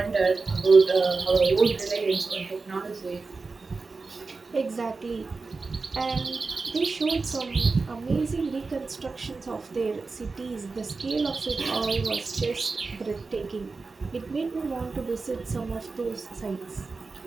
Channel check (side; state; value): left; quieter; 4.1 dB